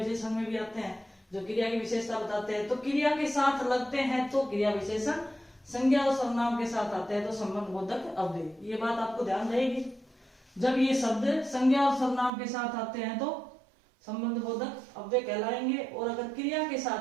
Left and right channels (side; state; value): left; drops out; at 12.3 s